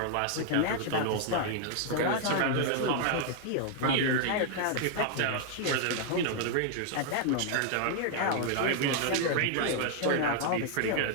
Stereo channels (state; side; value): different; both; correlation 0.00